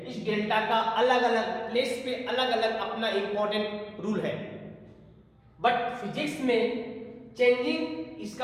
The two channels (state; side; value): identical; both; correlation 1.00